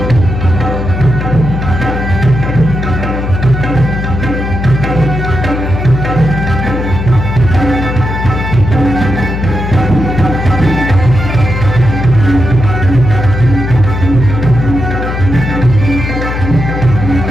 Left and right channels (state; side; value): noise; left; hum, 4 dB below the sound